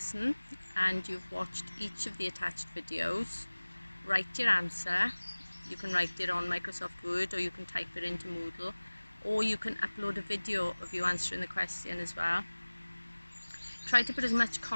and you've watched each of the attached videos, write your answer. You can write it on Microsoft Word, or you can type it into Moodle, or you can upload a video of you answering the question as well. Try to put as much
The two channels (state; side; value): inverted; both; correlation -1.00